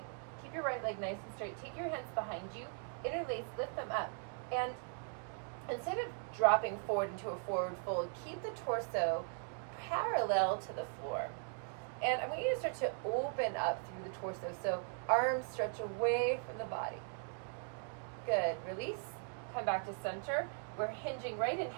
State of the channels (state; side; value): silent; left; 52 dB below the other